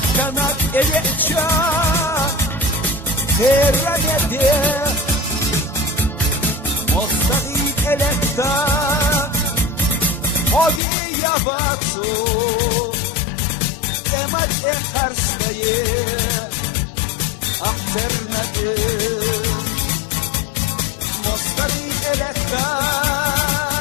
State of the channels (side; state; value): right; drops out; at 10.8 s